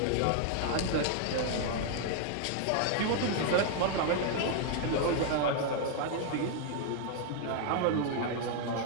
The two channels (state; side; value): different; both; correlation 0.00